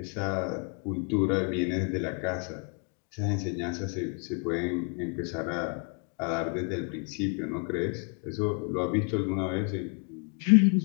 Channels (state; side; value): quieter; right; 35.9 dB